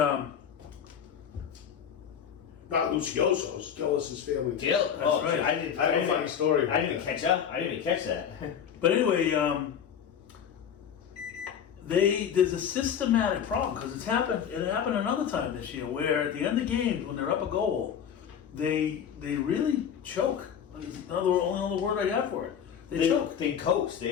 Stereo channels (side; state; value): right; quieter; 8.3 dB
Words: not Lucioso's, Gillis's family. That's right. I have a funny story. I didn't catch that. I didn't even catch that. But anyway, there's a systematic problem because it happened another time this year where at the end of games when they're up a goal, they really choke. Only other word I got for it. They choke. They coast. They